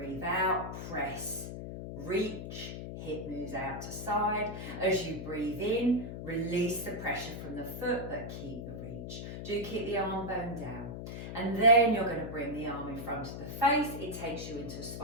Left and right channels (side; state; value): left; noise; hum, 7 dB below the sound